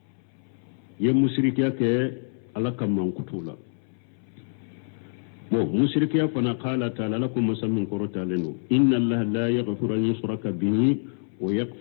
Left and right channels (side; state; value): right; silent; 61 dB below the other